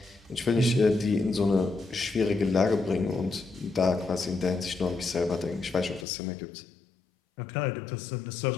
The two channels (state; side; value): drops out; right; at 6.1 s